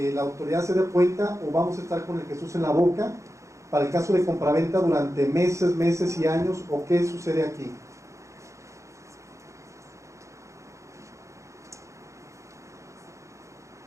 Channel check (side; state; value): left; late; 0.15 ms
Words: la autoridad se dé cuenta o vamos a estar con el Jesús en la boca para el caso de compraventa durante meses y años, o qué sucede aquí?